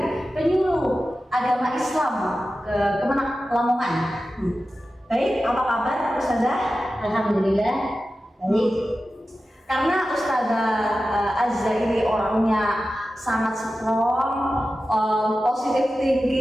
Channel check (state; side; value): normal; both; correlation 0.93